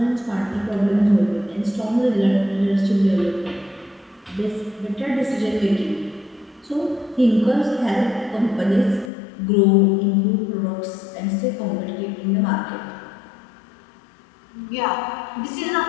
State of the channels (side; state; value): right; drops out; at 9.1 s